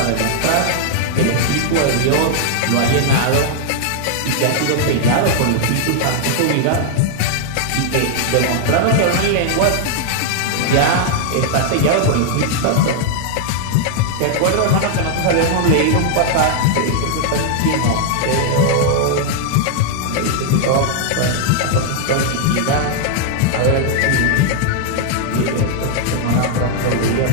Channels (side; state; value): both; different; correlation -0.01